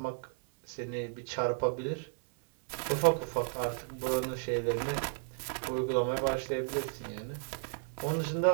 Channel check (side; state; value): left; silent; 55 dB below the other